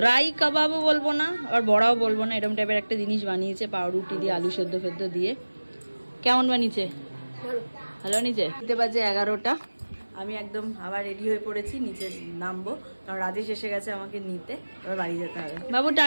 কাবাবও বলবো না, আর বড়াও বলবো না, এরকম টাইপের একটা জিনিস বানিয়েছে, পাউরুটি দিয়ে, আলু সেদ্ধ ফেদ্ধ দিয়ে। কেমন বানিয়েছে? ভালো বানিয়েছে। দিতে বাজে 11টা। আমি একদম আবার রেডি হয়ে পড়েছি, নিচে নামবো, কারণ রাজেশ এসে গেছে আমাকে নিতে, এবার বাড়ি যেতে হবে। বাবু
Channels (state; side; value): inverted; both; correlation -1.00